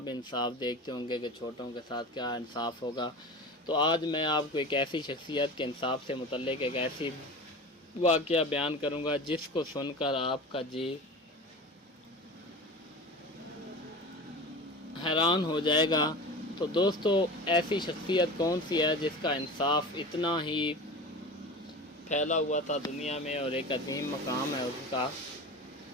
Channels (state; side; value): normal; both; correlation 0.32